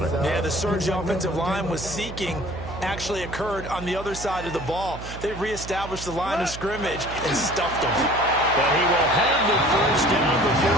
it. Yeah, the surge offensive line was seeking actually occurred on the other side of the ball. They reestablished the line of scrimmage and stuffed them. But he will have the first down before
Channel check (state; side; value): noise; right; hum, 11 dB below the sound